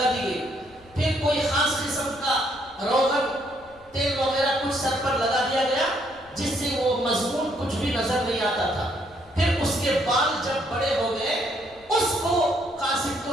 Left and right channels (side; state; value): left; noise; rumble, 27 dB below the sound